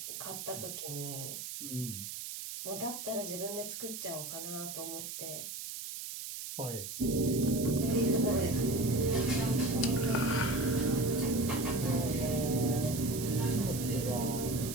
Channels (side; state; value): right; noise; hiss, 7 dB below the sound